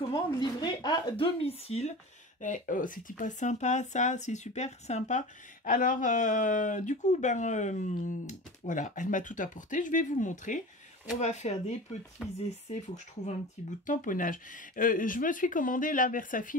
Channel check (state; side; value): normal; both; correlation 0.33